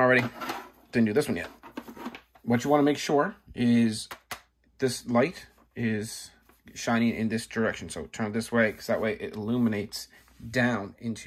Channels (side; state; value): both; identical; correlation 1.00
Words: Didn't do this one yet. What you want to make sure is this light is shining in this direction. So turn it this way, because that way it illuminates down